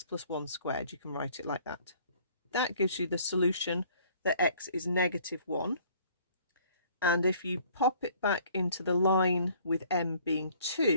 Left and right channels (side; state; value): both; inverted; correlation -0.57